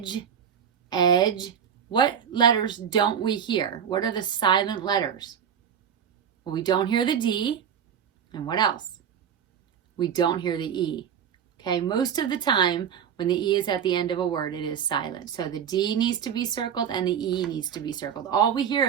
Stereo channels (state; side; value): quieter; left; 8.2 dB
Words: edge. What letters don't we hear? What are the silent letters? Well, we don't hear the D. And what else? We don't hear the E. Okay, most of the time when the E is at the end of a word, it is silent. So the D needs to be circled and the E needs to be circled. All we hear